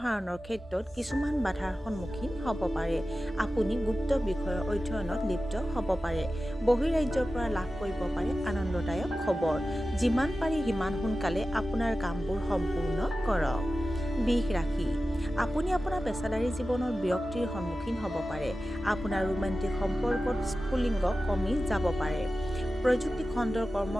ক্ষেত্ৰত কিছুমান বাধাৰ সন্মুখীন হ'ব পাৰে। আপুনি গুপ্ত বিষয়ৰ অধ্যয়নত লিপ্ত হ'ব পাৰে। বহিৰাজ্যৰ পৰা লাভ কৰিব পাৰে আনন্দদায়ক খবৰ। যিমান পাৰি সিমান সোনকালে আপোনাৰ কামবোৰ সম্পূৰ্ণ কৰক। বৃষ ৰাশি। আপুনি আপোনাৰ পেছাদাৰী জীৱনৰ বিৰক্তিৰ সন্মুখীন হ'ব পাৰে। আপোনাৰ ৰোমান্টিক সম্পৰ্কত স্ফুলিংগ কমি যাব পাৰে। প্ৰযুক্তি খণ্ডৰ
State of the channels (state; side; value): normal; both; correlation 0.94